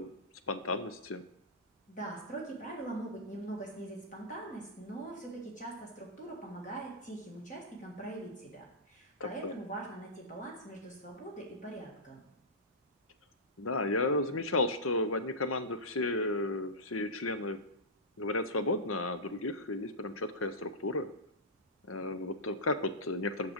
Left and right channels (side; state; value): both; normal; correlation -0.15